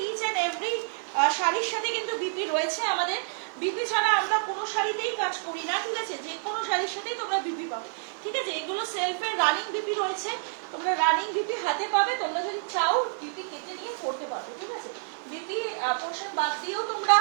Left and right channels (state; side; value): silent; left; 57 dB below the other